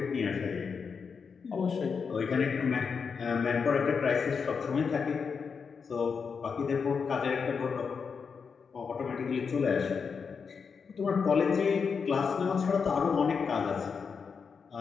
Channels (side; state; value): right; quieter; 5.8 dB